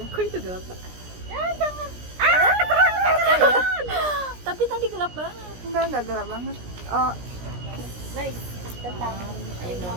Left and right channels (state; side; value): late; left; 17 ms